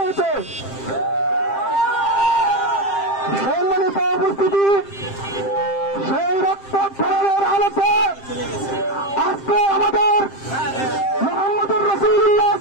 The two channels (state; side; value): late; right; 7.6 ms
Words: সম্মানিত উপস্থিতি, সেই রক্তক্ষরণের আলোতে আজকে আমাদের মুহাম্মদুর রাসূলুল্লাহ